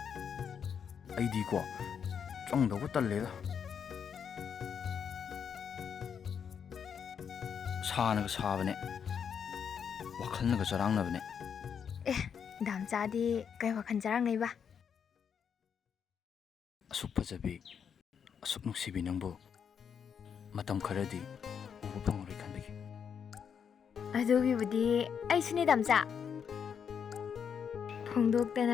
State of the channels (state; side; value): quieter; right; 7.3 dB